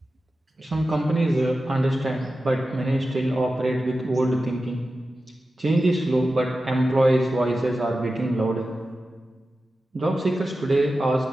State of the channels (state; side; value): normal; both; correlation 0.93